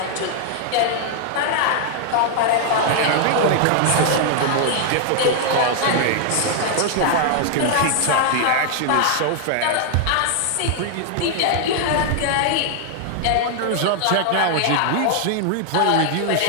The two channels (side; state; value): both; different; correlation -0.01